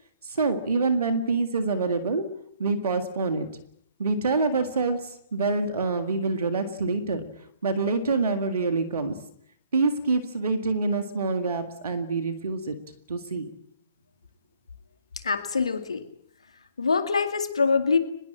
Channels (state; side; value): inverted; both; correlation -0.64